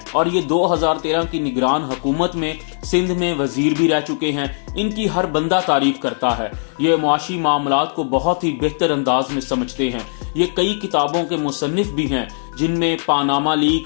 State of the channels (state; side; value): silent; right; digital silence